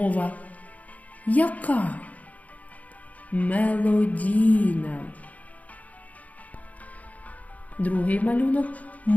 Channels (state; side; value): late; right; 0.072 ms